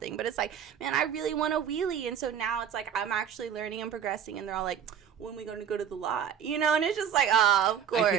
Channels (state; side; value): quieter; left; 8.5 dB